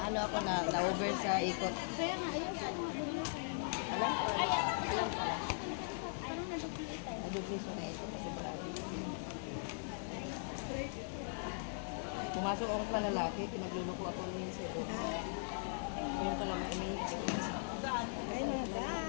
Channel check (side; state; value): right; silent; 51 dB below the other